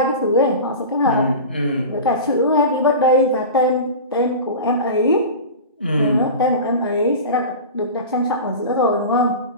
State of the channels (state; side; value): inverted; both; correlation -0.30